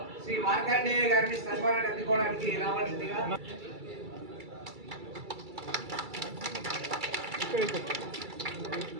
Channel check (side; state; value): left; late; 2.3 ms